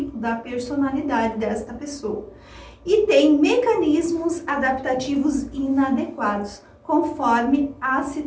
da personalidade desta pessoa. E tem mecanismos adaptativos inadequados, conforme a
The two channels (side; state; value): both; identical; correlation 1.00